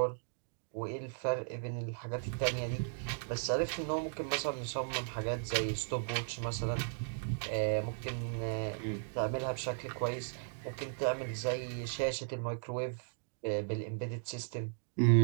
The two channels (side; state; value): left; silent; digital silence